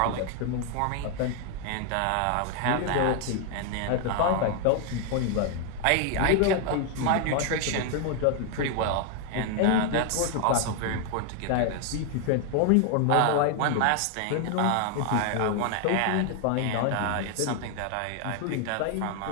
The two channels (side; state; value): both; different; correlation 0.00